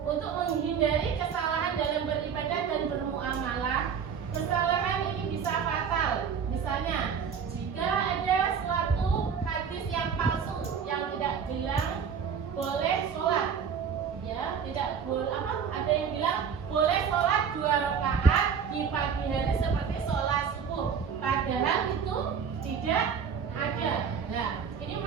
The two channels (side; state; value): left; quieter; 6.9 dB